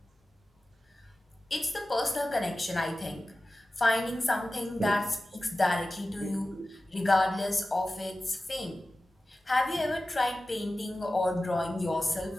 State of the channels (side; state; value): both; normal; correlation 0.95